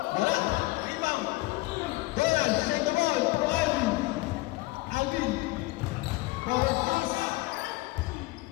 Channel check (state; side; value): quieter; right; 21.1 dB